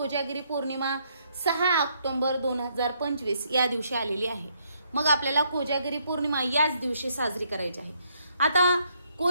पौर्णिमा 6 ऑक्टोबर 2025 या दिवशी आलेली आहे. मग आपल्याला कोजागिरी पौर्णिमा याच दिवशी साजरी करायची आहे. आता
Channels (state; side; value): inverted; both; correlation -0.72